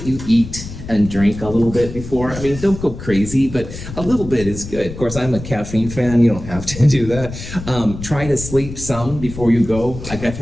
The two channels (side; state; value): left; noise; rumble, 11 dB below the sound